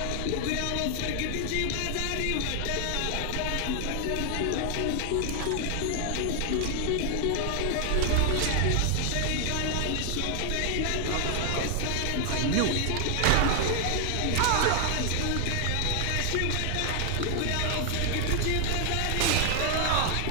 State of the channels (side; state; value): both; different; correlation 0.00